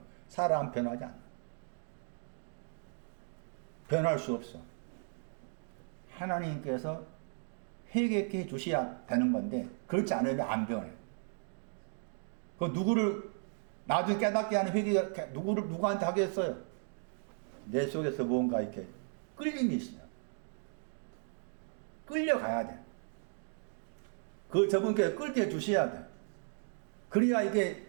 사람 변하지 않아. 변할 수 없어. 하나님께서 회개케 주셔야 되는 건데 그렇지 않으면 안 변해. 그 누구를 나중에 깨닫게 하는 회개가 누구한테 하겠어요? 내 속에서 뭔가 이렇게 끌림이 있어요. 끌려가야 돼. 그 저분께 끌게 주셔야 돼. 그래야 이게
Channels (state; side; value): silent; left; 54 dB below the other